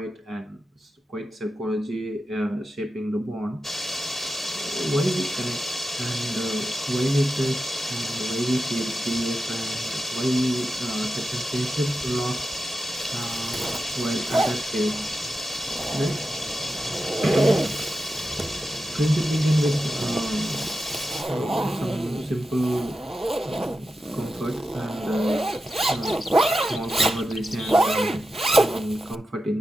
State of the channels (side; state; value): both; normal; correlation 0.90